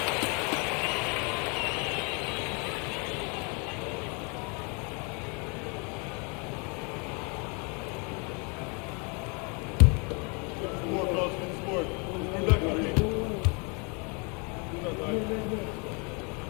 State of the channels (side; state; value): right; quieter; 33.4 dB